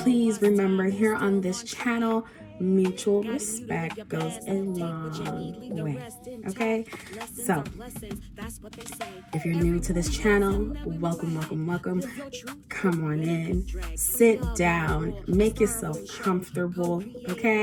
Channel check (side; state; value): both; identical; correlation 1.00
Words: remember, here on this channel, mutual respect goes a long way. Okay, so if you're new to this channel, welcome. Come on in, sit down, make yourself comfortable.